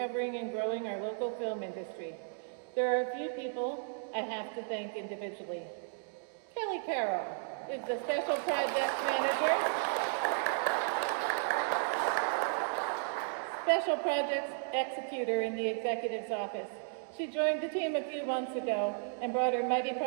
and growing our local film industry. There are a few people I have to thank individually. Kelly Carroll is the Special Projects Manager, Special Projects Executor in the Executive's Office. She joined the team a few months ago and brought her mighty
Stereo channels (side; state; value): left; silent; digital silence